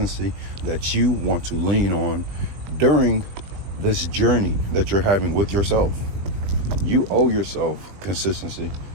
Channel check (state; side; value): late; left; 20 ms